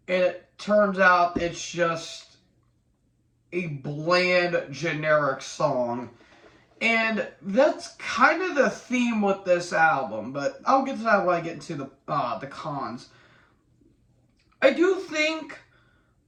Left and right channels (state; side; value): identical; both; correlation 1.00